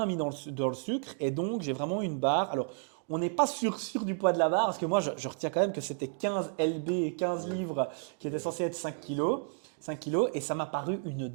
mis dans le sucre et donc j'ai vraiment une barre. Alors, on n'est pas sûr du poids de la barre parce que moi, je retiens quand même que c'était 15 lb et 15 Yeah. livres qui étaient Yeah. censés être 5 C'est kilos. 5 kilos et ça m'a paru une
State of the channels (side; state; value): left; silent; 57 dB below the other